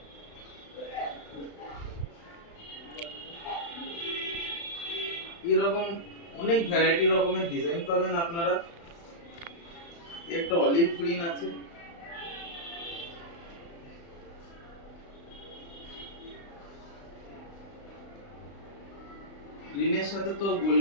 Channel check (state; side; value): late; right; 35 ms